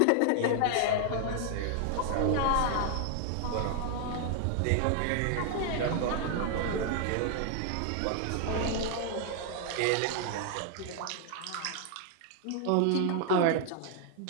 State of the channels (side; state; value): both; different; correlation 0.00